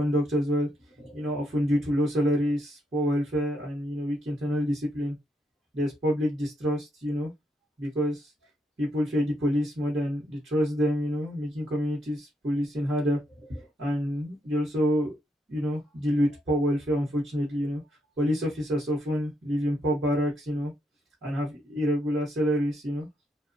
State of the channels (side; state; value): both; normal; correlation 0.78